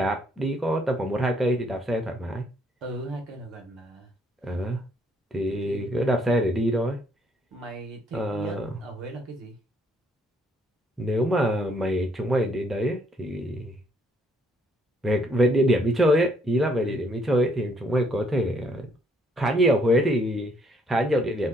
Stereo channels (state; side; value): normal; both; correlation 0.68